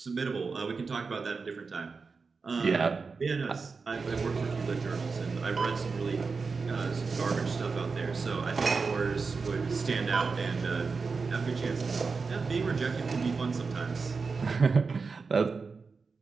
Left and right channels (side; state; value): left; quieter; 4.7 dB